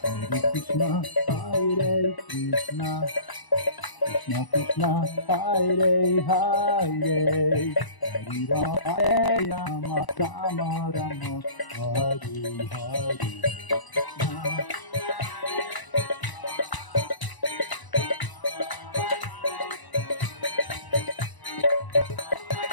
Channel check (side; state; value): right; late; 1.0 ms